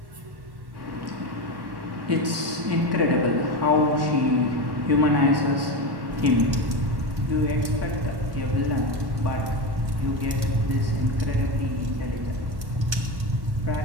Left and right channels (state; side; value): late; left; 1.1 ms